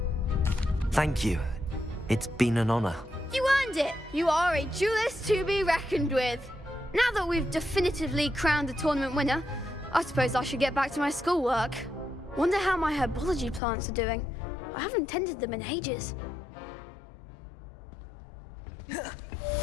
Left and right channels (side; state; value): right; drops out; at 13.6 s